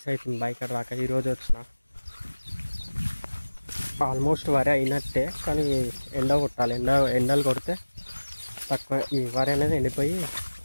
అవుతుంది బైక్ రాక. ఈరోజు వచ్చిన. ఆల్మోస్ట్ వరి అయినట్టే, కానీ ఎండ కొట్టాలి. ఎండలు కొడితే తక్కువ ఈ వరి అనేది ఎండిపోయి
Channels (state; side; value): inverted; both; correlation -1.00